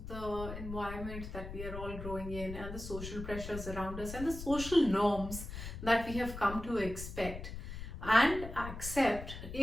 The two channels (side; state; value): left; noise; rumble, 9 dB below the sound